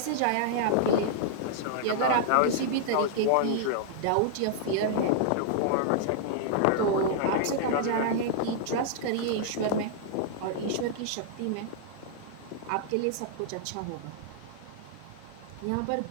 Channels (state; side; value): different; both; correlation -0.01